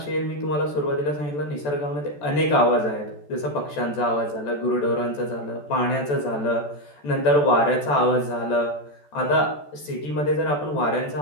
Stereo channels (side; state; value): right; late; 14 ms